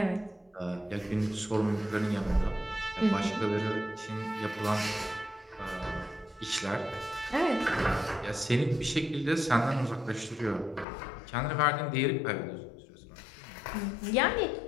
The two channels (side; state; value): right; drops out; at 10.9 s